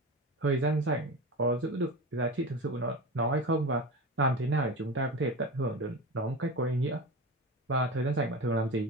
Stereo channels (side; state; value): both; normal; correlation 0.27